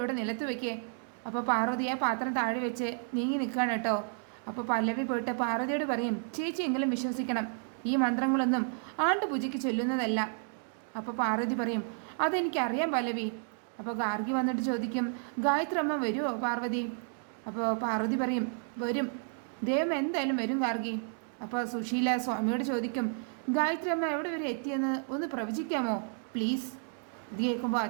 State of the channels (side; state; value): left; silent; 57 dB below the other